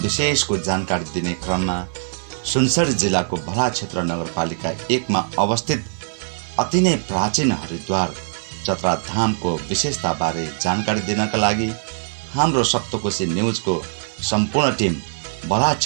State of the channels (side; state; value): left; silent; 58 dB below the other